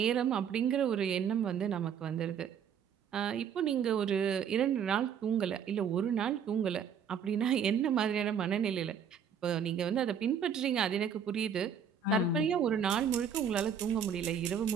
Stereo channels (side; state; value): left; quieter; 7.5 dB